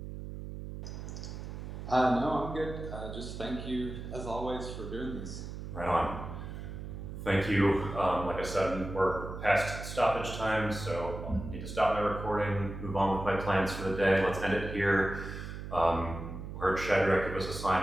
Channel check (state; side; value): noise; right; hum, 8 dB below the sound